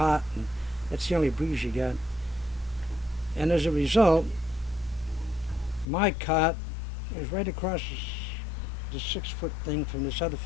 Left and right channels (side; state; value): right; drops out; at 5.9 s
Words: and that's the only breeze you got. And as a result, my cot was right across the 6 foot thing from this other